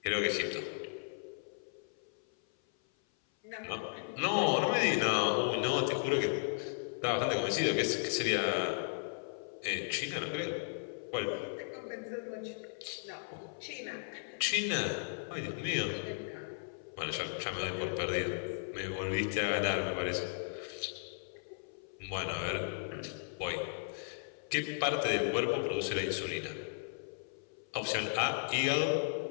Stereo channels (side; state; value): right; silent; 54 dB below the other